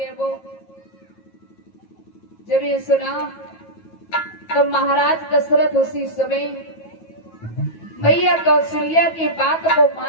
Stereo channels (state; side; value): late; right; 9.2 ms